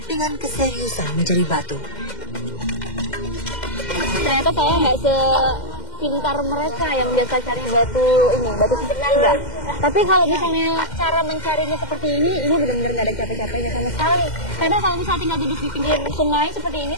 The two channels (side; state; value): right; late; 2.1 ms